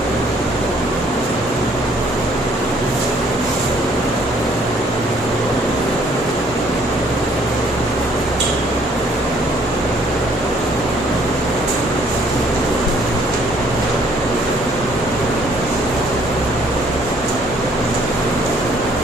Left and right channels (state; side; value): normal; both; correlation 0.62